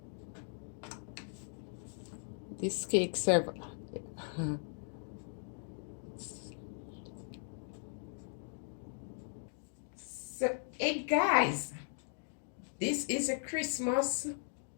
This cake serve. So, hey guys, this is a Christmas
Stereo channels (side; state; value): right; silent; digital silence